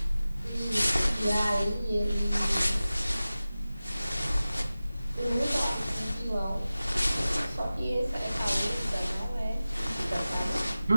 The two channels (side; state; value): both; inverted; correlation -0.96